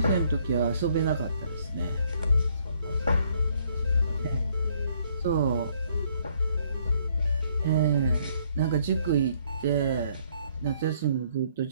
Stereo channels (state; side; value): inverted; both; correlation -0.66